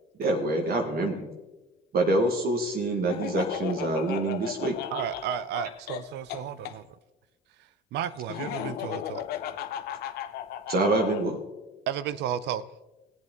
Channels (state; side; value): normal; both; correlation 0.36